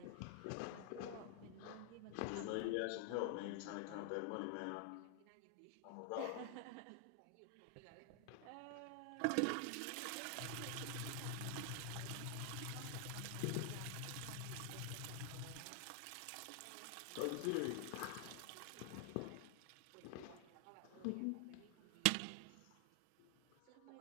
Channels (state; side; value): different; both; correlation 0.00